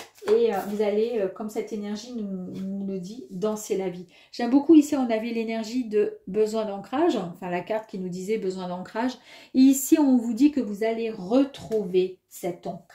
Et vous allez, comme cette énergie nous le dit, danser la vie. J'aime beaucoup ici, on avait l'énergie de besoin d'ancrage. Enfin, la carte qui nous disait besoin d'ancrage. Et ici, on vous dit que vous allez retrouver cet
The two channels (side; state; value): both; identical; correlation 1.00